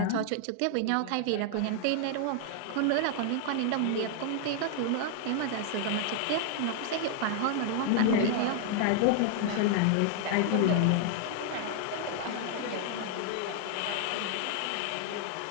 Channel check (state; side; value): different; both; correlation 0.00